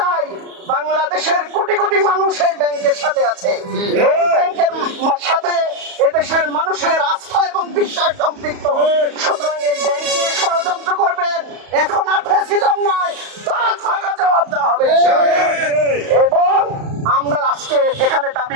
বাংলাদেশের কোটি কোটি মানুষ এই ব্যাংকের সাথে আছে, এই ব্যাংকের সাথে এদেশের মানুষের আস্থা এবং বিশ্বাস সম্পৃক্ত। সুতরাং এই ব্যাংক নিয়ে ষড়যন্ত্র করবেন, এখন আর ফ্যাসিজম নয়, তার ভাঙা জবাব দেওয়া হবে। এবং আমরা আজকে এখানে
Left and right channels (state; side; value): late; left; 34 ms